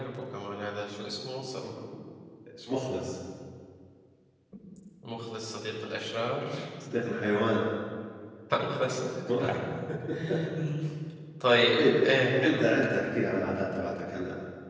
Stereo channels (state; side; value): identical; both; correlation 1.00